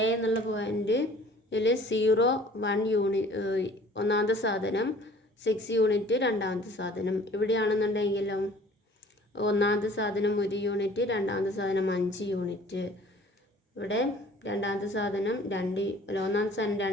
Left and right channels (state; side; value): normal; both; correlation 0.51